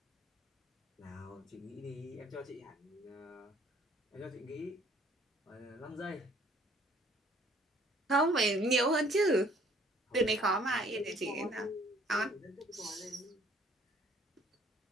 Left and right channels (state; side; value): normal; both; correlation 0.59